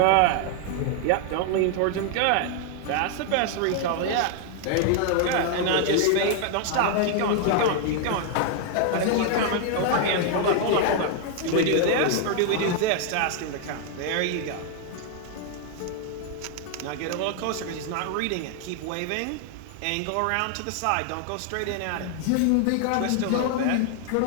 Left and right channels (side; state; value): both; different; correlation 0.00